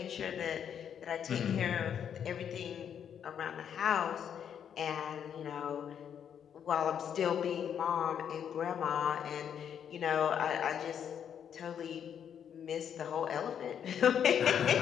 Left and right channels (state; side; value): quieter; right; 8.5 dB